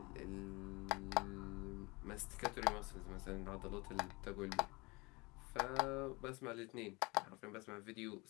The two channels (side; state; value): right; quieter; 25.7 dB